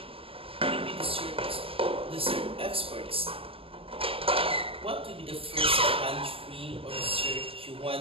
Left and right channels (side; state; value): left; late; 0.27 ms